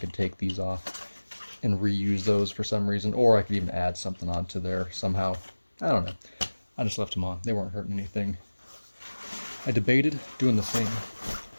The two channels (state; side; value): inverted; both; correlation -1.00